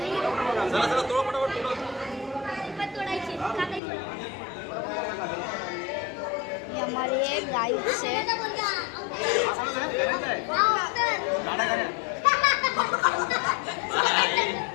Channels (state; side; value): drops out; right; at 3.8 s